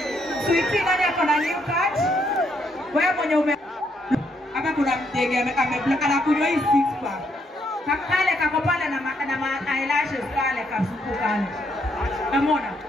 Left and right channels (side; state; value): both; normal; correlation 0.74